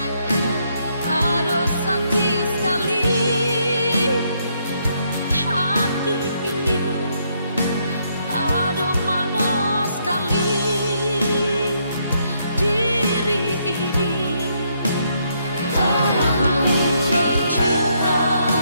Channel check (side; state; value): both; inverted; correlation -0.74